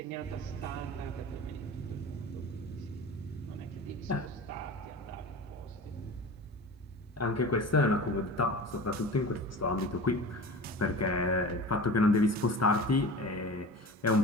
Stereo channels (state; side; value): normal; both; correlation 0.34